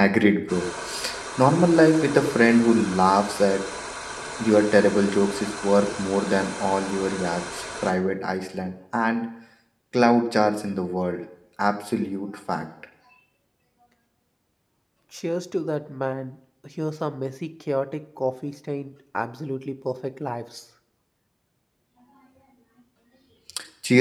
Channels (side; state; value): both; identical; correlation 1.00